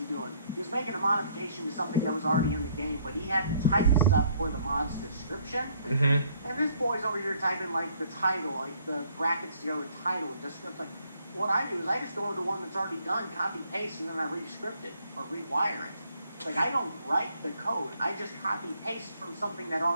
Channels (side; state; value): both; inverted; correlation -0.65